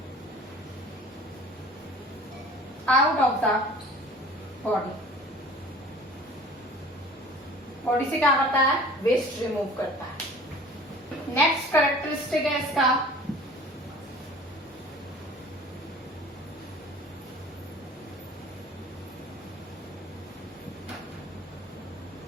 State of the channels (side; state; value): both; normal; correlation 0.46